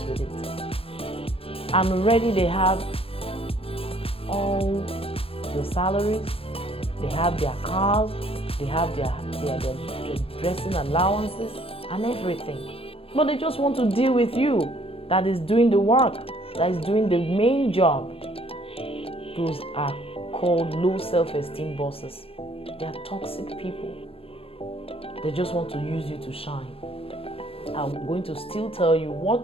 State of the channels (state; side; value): late; right; 0.28 ms